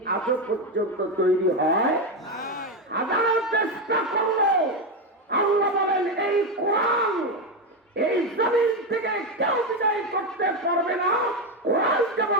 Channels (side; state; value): both; normal; correlation 0.10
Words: আজও পর্যন্ত তৈরি হয়? হাজার চেষ্টা করলো, আল্লাহ বলেন এই কোরআন এই জমিন থেকে কেউ বিদায় করতে পারবে না। কোরআন যেমন